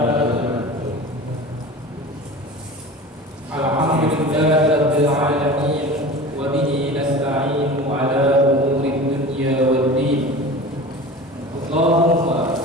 Alhamdulillahirabbil alamin wa bihi nasta'inu ala umuri dunya waddin. Allahumma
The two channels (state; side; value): normal; both; correlation 0.36